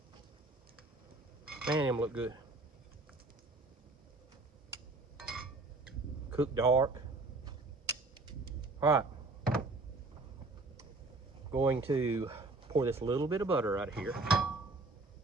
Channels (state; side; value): quieter; left; 3.2 dB